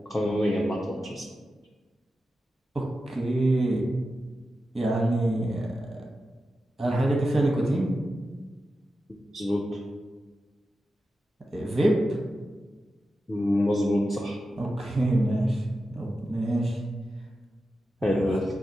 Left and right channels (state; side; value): normal; both; correlation 0.91